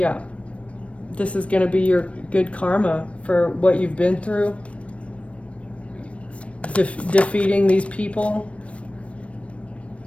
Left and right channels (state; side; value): late; right; 0.062 ms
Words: this is going to be your good karma for what you've been through. Defeating these people